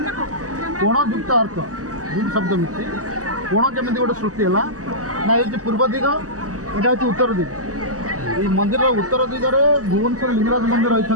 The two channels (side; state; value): left; late; 0.66 ms